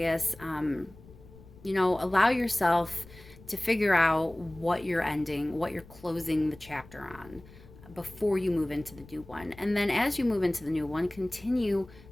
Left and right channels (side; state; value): left; noise; rumble, 21 dB below the sound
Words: You know, allow yourself to figure out what you're ending, what you're closing the chapter on before you move into the new one. And then as you move into the new one, continue